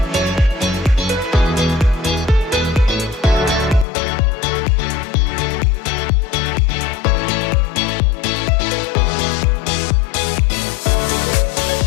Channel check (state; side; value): drops out; right; at 3.9 s